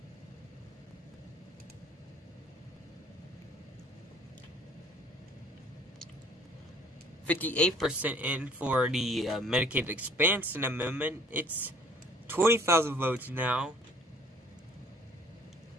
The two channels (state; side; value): normal; both; correlation 0.56